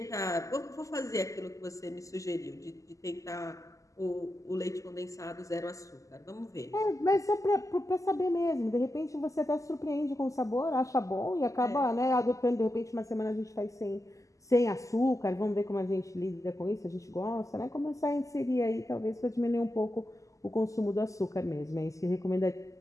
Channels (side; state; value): right; late; 0.16 ms